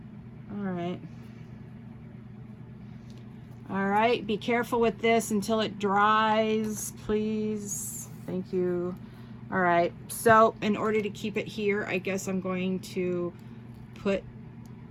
All right. All right, be careful with this until it dries, please. Thank you. All right, so in order to keep it here, I guess I'm going to put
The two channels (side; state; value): both; identical; correlation 1.00